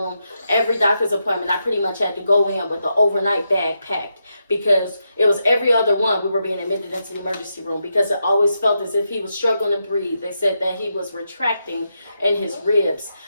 Every doctor's appointment, I pretty much had to go in with an overnight bag packed, because it was every other one we were being admitted into the emergency room, because it always felt as if he was struggling to breathe. They said that he was retracting in his ribs,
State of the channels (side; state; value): both; inverted; correlation -0.84